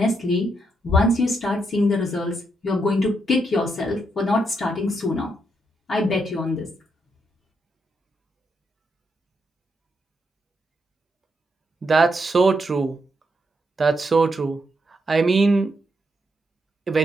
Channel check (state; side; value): normal; both; correlation 0.80